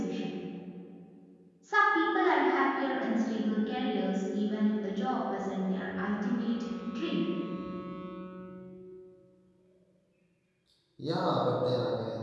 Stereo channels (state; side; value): identical; both; correlation 1.00